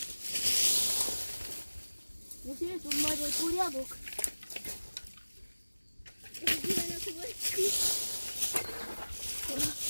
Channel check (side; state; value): both; inverted; correlation -1.00